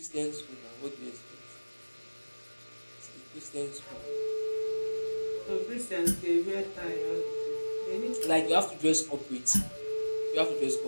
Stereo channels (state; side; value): inverted; both; correlation -1.00